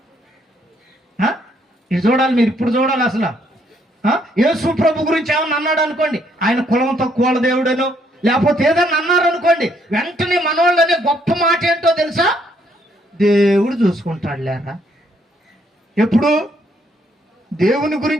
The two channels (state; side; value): normal; both; correlation 0.70